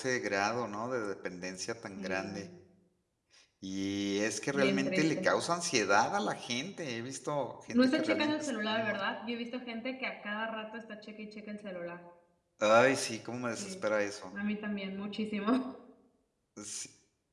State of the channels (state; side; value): identical; both; correlation 1.00